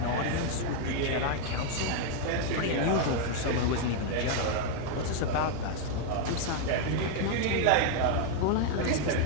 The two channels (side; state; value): both; different; correlation 0.00